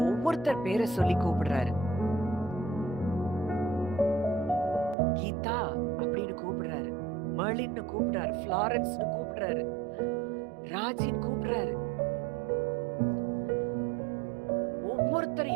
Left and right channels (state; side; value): drops out; left; at 5.0 s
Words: ஒவ்வொருத்தர் பேரை சொல்லி கூப்பிடுறாரு. கீதா அப்படின்னு கூப்பிடுறாரு, மர்லின்னு கூப்பிடுறாரு, ஃப்ளாரன்ஸ்னு கூப்பிடுறாரு, ராஜின்னு கூப்பிடுறாரு.